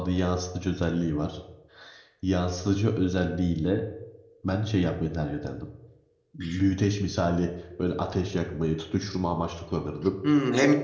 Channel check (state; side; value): identical; both; correlation 1.00